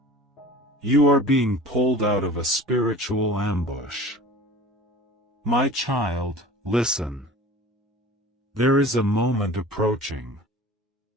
You are being pulled out of a spiritual ambush. My child, listen. There is a moment approaching.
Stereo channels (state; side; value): normal; both; correlation 0.41